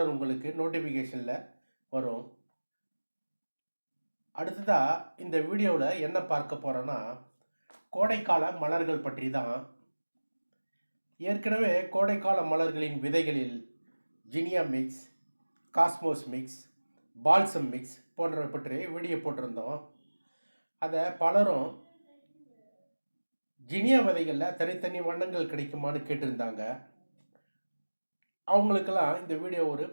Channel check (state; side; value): inverted; both; correlation -1.00